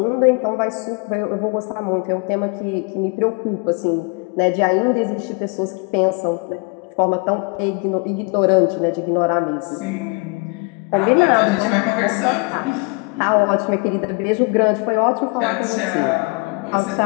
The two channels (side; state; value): right; quieter; 31.5 dB